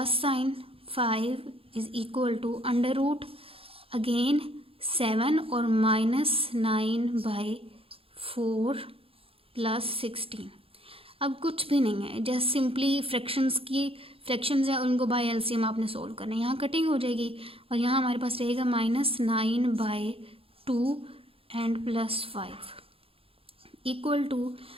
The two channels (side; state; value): left; late; 0.27 ms